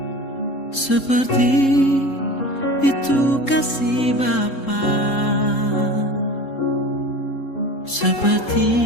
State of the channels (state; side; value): late; right; 3.7 ms